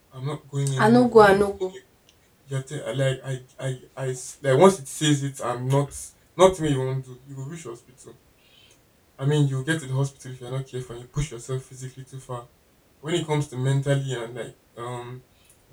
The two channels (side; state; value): both; identical; correlation 1.00